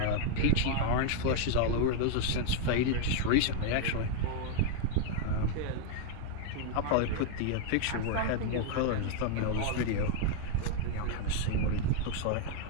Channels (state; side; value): different; both; correlation 0.00